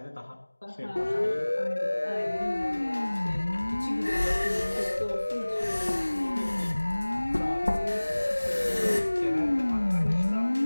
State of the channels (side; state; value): both; inverted; correlation -1.00